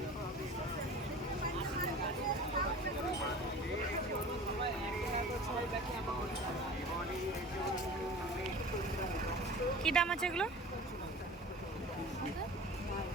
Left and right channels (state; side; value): normal; both; correlation 0.39